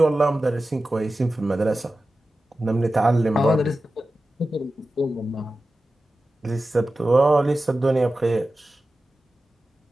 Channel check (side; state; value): both; normal; correlation 0.94